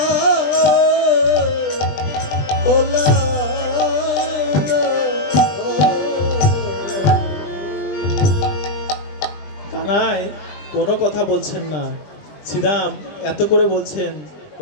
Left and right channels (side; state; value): right; late; 20 ms